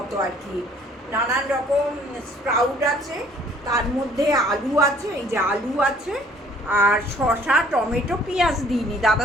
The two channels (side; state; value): both; normal; correlation 0.57